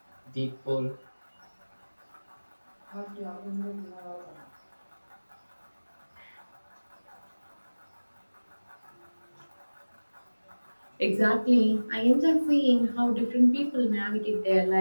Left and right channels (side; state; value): both; inverted; correlation -1.00